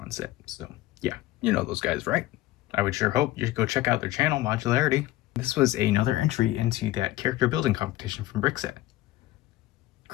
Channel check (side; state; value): right; quieter; 16.4 dB